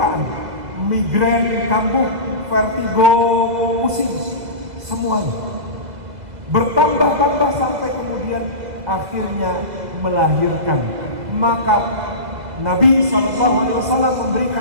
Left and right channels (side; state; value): left; late; 2.0 ms